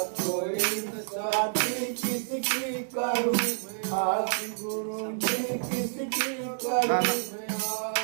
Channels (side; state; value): left; silent; digital silence